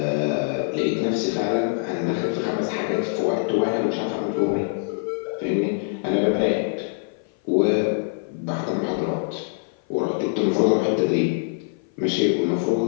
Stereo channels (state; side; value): silent; right; 56 dB below the other